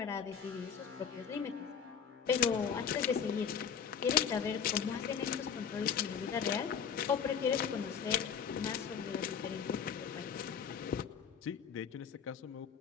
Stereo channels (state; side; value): quieter; right; 7.3 dB